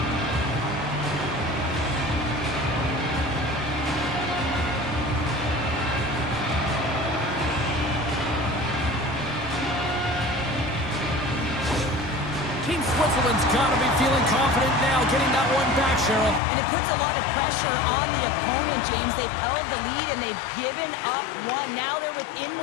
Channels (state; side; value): drops out; right; at 16.4 s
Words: Team Switzerland's got to be feeling confident now, getting that one back, Cheryl. And it puts a lot of pressure on the opponent, James. They've held the lead and they've given up 1. Now they're within